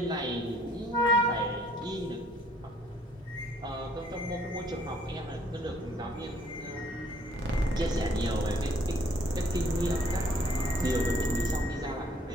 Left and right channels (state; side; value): normal; both; correlation 0.61